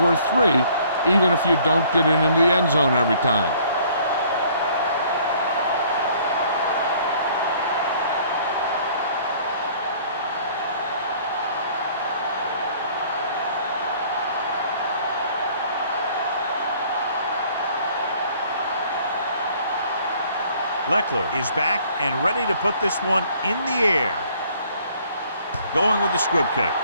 3, even if you don't get it into the end zone every time. Leckler is back and ready to put this one in the air. Going with the squib kick.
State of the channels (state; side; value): inverted; both; correlation -0.57